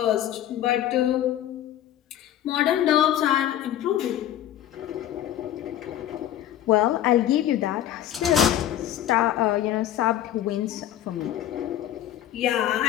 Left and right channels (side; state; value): right; quieter; 11.9 dB